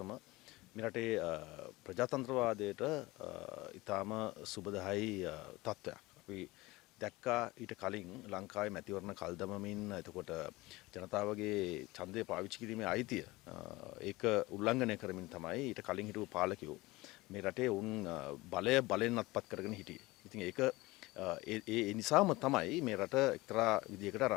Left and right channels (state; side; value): quieter; right; 20.9 dB